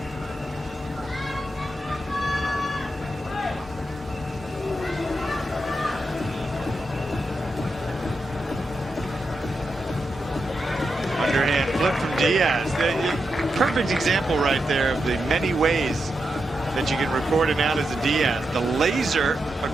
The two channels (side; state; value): both; normal; correlation 0.86